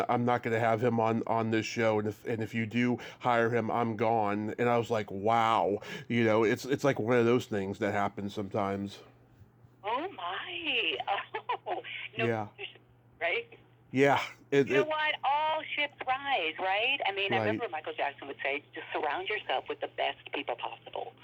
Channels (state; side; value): identical; both; correlation 1.00